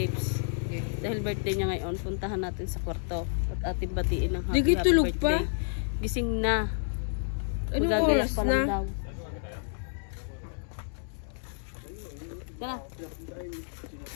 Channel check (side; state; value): right; silent; digital silence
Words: Dahil birthday niya ngayon, puntahan natin sa kwarto at ating batiin ng happy tulog birthday. pa? Gising na. Anong Magagayak oras pa lang na? daw. Tara.